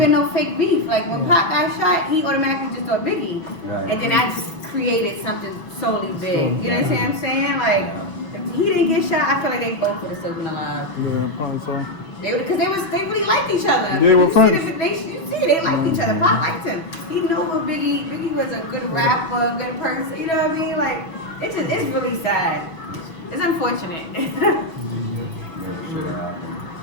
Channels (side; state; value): right; late; 6.1 ms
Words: no fake beef. Like, when Pop got shot, he automatically just thought Biggie. Right. And then I just created something solely big. You know what I'm saying? Like, if he didn't get shot, I feel like they both would have still been alive. Yeah, probably so. Because they really liked each other. They were you friends. They liked each other. Pop liked him. He knew what Biggie was a good rapper, a good person. You know what I mean? Like, it's really sad. It's unfortunate. Never should have happened.